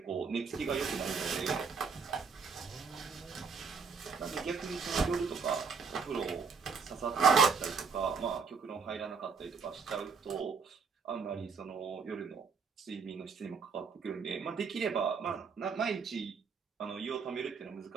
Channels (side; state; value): left; quieter; 5.6 dB